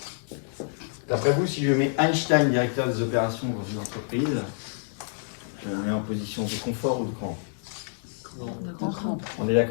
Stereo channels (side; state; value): right; silent; digital silence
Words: D'après vous, si je mets Einstein, directeur des opérations dans une entreprise, je le mets en position de confort ou de crampe? On est